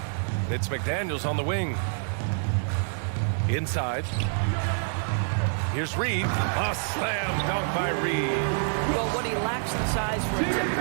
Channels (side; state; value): left; silent; 58 dB below the other